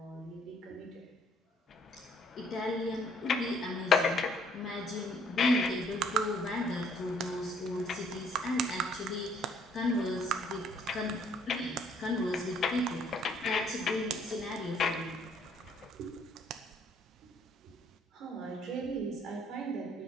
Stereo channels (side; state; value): both; normal; correlation 0.64